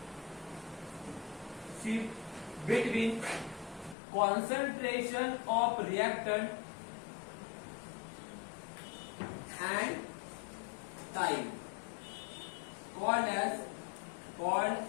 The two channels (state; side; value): drops out; right; at 4.0 s